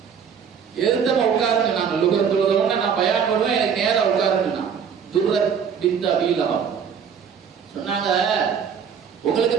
எதிர்த்தமா உட்காருன்னு நாங்க லுகர் தொழுதவன நான் பயான் பண்ணுவேன், எனக்கு நேரம் உட்காருன்னு. துர்ரத் பின்த் அபீ லஹப் சொன்னாங்க, உங்களுக்கு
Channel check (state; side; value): quieter; left; 7.1 dB